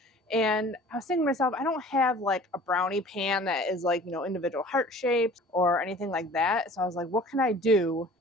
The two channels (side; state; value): both; normal; correlation 0.46